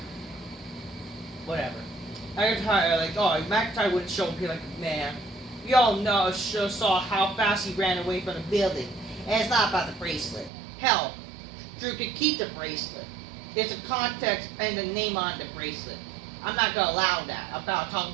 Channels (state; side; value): drops out; left; at 10.5 s